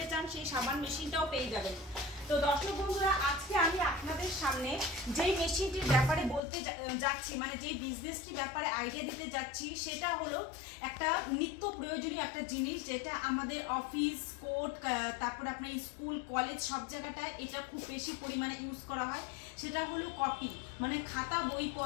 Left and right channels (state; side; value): drops out; right; at 6.4 s